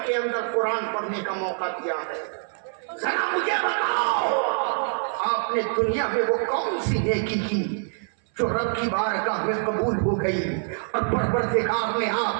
کے اندر قرآن پڑھنے کا موقع دیا ہے. ذرا مجھے بتاؤ, آپ نے دنیا میں وہ کون سی نیکی کی جو رب کی بارگاہ میں قبول ہو گئی اور پروردگار نے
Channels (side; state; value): left; silent; 57 dB below the other